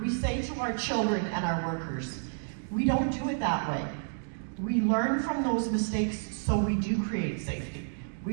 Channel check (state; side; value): silent; left; digital silence